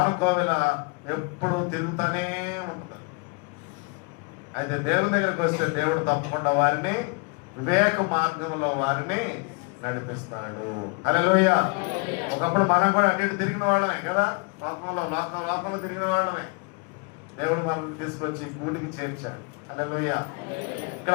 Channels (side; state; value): right; quieter; 31.3 dB